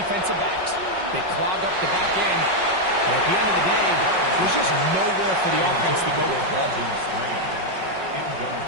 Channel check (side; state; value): left; late; 5.4 ms